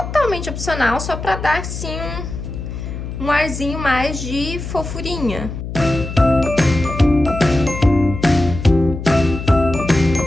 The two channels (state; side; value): noise; left; hum, 7 dB below the sound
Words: opcional, só pra dar, assim, um arzinho mais de fofurinha.